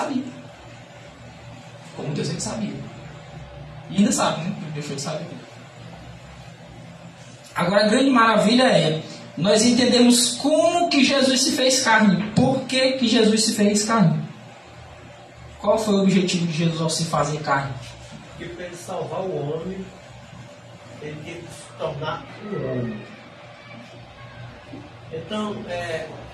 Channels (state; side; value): identical; both; correlation 1.00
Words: Como Deus ele sabia. E ainda sabe, né? Deixou de saber. Agora a grande maravilha é nós entendemos como que Jesus se fez carne. Por que Jesus se fez carne? Qual foi o objetivo de Jesus ao se fazer carne? Porque para ele salvar o homem, ele teve que se tornar um homem. Então,